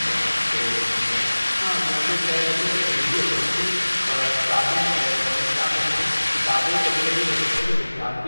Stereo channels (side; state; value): both; inverted; correlation -1.00